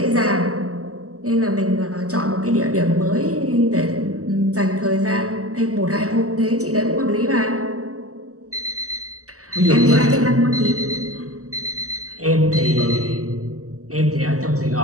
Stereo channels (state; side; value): late; left; 0.66 ms